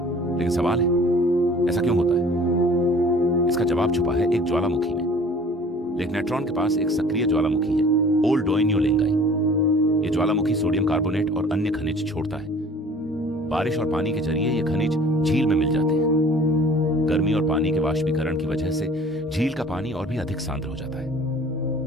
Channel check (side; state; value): both; normal; correlation 0.49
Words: लेकिन सवाल है, ऐसा क्यों होता है? इसका जवाब छुपा है एक ज्वालामुखी में। लेक नेट्रॉन के पास एक सक्रिय ज्वालामुखी है, ओल डोइन्यो लेंगाई। यह ज्वालामुखी सोडियम कार्बोनेट और अन्य खनिज छोड़ता है। बारिश और पानी के जरिए ये खनिज झील में मिल जाते हैं। गर्मी और पानी के वाष्पीकरण की वजह से झील का पानी और भी अधिक सांद्र हो जाता है